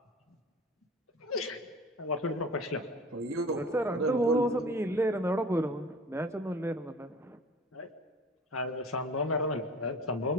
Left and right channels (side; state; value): both; normal; correlation 0.41